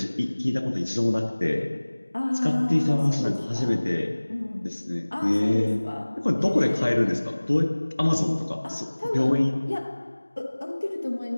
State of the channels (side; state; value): both; inverted; correlation -1.00